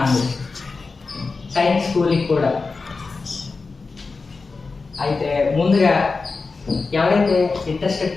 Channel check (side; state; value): right; quieter; 4.2 dB